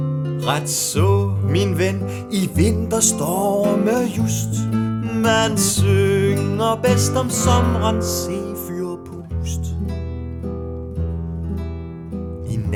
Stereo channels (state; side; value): identical; both; correlation 1.00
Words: Ret så, min ven, i vinterstorme just. Man synger bedst om sommerens sefyrpust. I